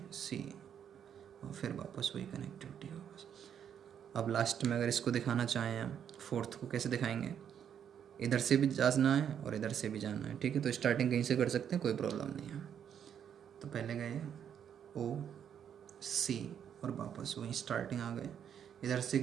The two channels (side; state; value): left; quieter; 8.7 dB